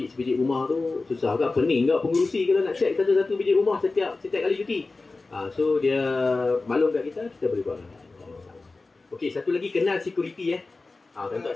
rumah tu susah agak, pening agak pengurusi kalau nak check satu-satu biji rumah setiap kali cuti. So dia maklum kat kita boleh buat. Okey, satu lagi kenal security Tentu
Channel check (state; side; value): quieter; right; 3.6 dB